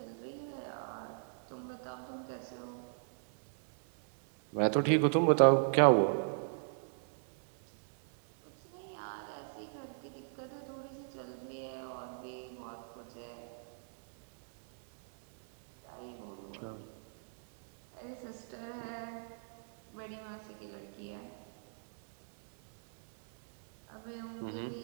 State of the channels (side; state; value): left; silent; 53 dB below the other